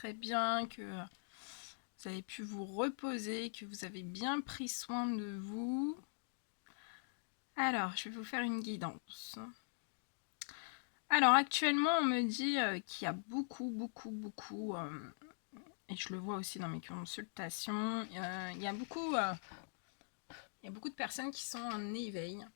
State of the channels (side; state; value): right; silent; digital silence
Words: bien, que vous avez pu vous reposer, que vous avez bien pris soin de vous. Alors, je vais vous faire une guidance. Alors, actuellement, on me dit qu'il y a beaucoup, et je le vois aussi dans mes consultations, il y a beaucoup de personnes qui sont en éveil.